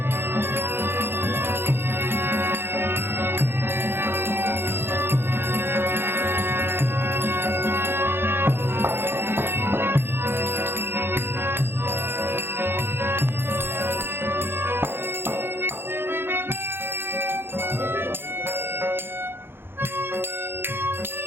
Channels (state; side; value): late; left; 0.11 ms